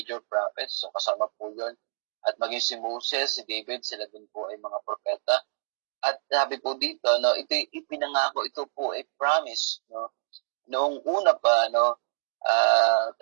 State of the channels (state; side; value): silent; left; digital silence